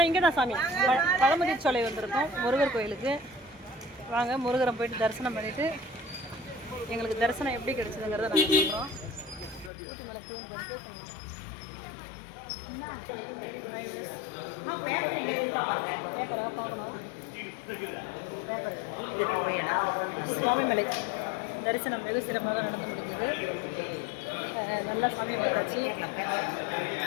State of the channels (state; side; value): drops out; right; at 9.7 s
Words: இங்கே தான் சாமி பழமுதிர்ச்சோலை வந்திருக்கோம் முருகர் கோயிலுக்கு. வாங்க முருகரை போயிட்டு தரிசனம் பண்ணிவிட்டு எங்களுக்கு தரிசனம் எப்படி கிடைச்சதுங்கிறத நாங்கள் சொல்கிறோம். ஊட்டி மலை கோயில் போயிட்டு பேப்பராக பார்க்கணும். சுவாமிமலை தரிசனம் வெகு சிறப்பாக நடந்து முடிஞ்சது. நல்லா சாமியை பார்த்தாச்சு.